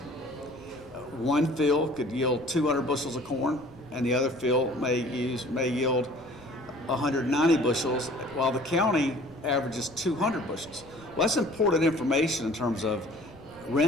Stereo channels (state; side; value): noise; left; rumble, 26 dB below the sound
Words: One field could yield 200 bushels of corn, and the other field may yield 190 bushels, while the county averages 200 bushels. Well, that's important information in terms of